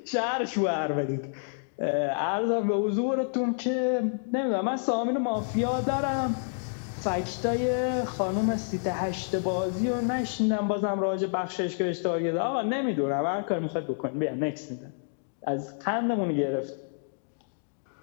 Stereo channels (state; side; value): silent; right; digital silence